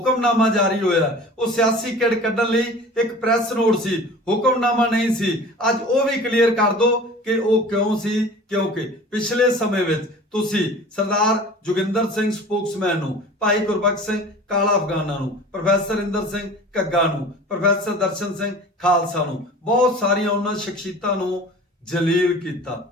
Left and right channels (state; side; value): normal; both; correlation 0.41